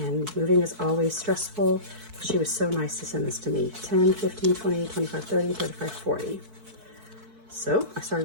moving is always stressful. She was so nice to send this to me. 10, 15, 20, 25, 30, 35, 40. So I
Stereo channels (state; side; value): late; left; 4.6 ms